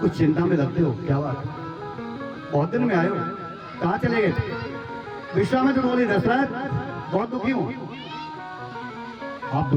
चिंता में लगते हो, क्या बात? बहुत दिन में आए हो, कहाँ चले गए? विश्वामित्र बोले दशरथ बहुत दुखी हूं। आप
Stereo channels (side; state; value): both; identical; correlation 1.00